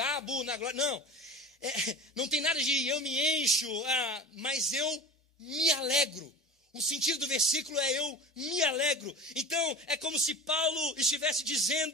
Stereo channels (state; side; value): normal; both; correlation 0.34